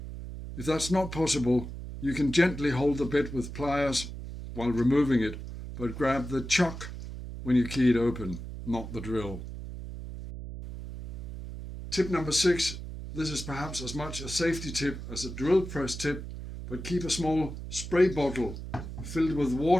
If that's not possible, you can gently hold the bit with pliers while removing it, but grab the chuck when you key it open, not the drill. Tip number 6. This is perhaps as much a safety tip as a drill press tip, but keep a small spray bottle filled with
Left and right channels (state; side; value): noise; right; hum, 9 dB below the sound